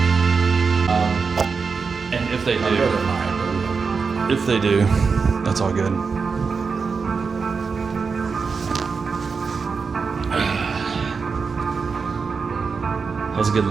If they do, that's all good. That was a good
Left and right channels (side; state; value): left; quieter; 5.1 dB